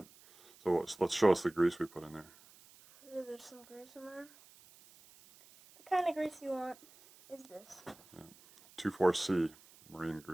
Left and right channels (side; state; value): right; noise; hiss, 24 dB below the sound